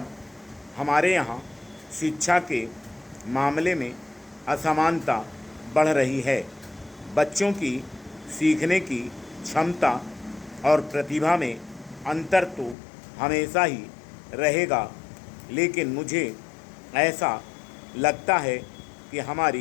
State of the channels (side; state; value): right; drops out; at 12.8 s